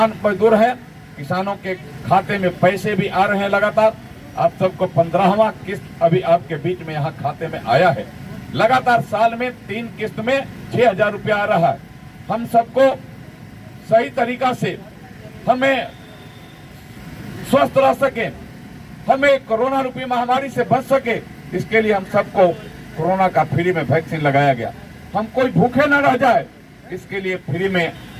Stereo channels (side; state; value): both; identical; correlation 1.00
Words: मजदूर हैं, किसानों के खाते में पैसे भी आ रहे हैं लगातार। आप सबको 15वां किस्त अभी आपके बीच में यहाँ खाते में आया है। लगातार साल में 3 किस्त में 6,000 रुपया आ रहा है। हम सबको सही तरीका से हमें स्वस्थ रह सके, हमें कोरोना रूपी महामारी से बच सके, इसके लिए हम सबको कोरोना का फ्री में वैक्सीन लगाया गया। हम कोई भूखे न रह जाए, इसके लिए फ्री में